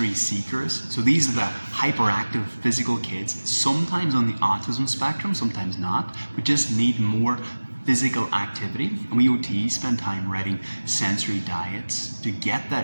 seekers, so these are the hyperactive physical kids, sometimes on the autism spectrum, sometimes not, but just need more physical activity. And we OTs spend time writing sensory diets to get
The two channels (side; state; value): both; inverted; correlation -1.00